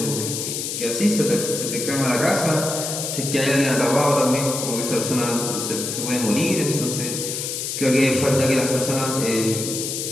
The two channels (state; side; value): noise; left; hiss, 4 dB below the sound